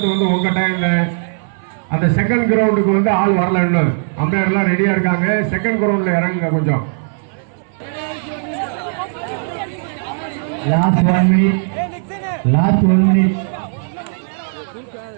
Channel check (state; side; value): silent; left; 61 dB below the other